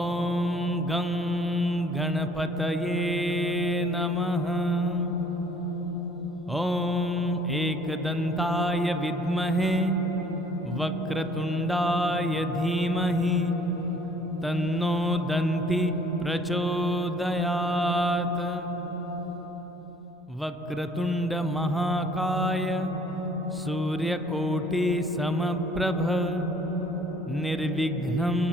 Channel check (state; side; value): normal; both; correlation 0.57